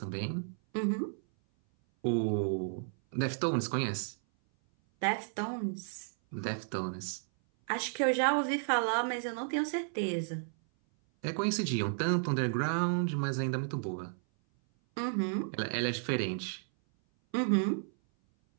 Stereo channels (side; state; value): left; silent; 56 dB below the other